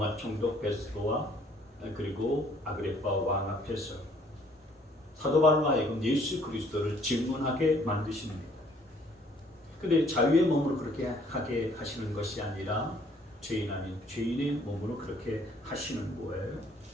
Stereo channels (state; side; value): normal; both; correlation 0.61